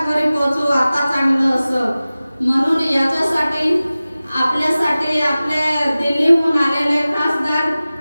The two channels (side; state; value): both; inverted; correlation -0.97